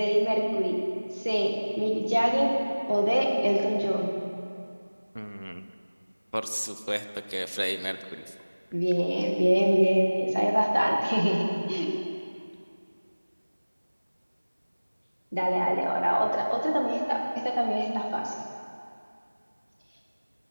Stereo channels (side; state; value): both; inverted; correlation -1.00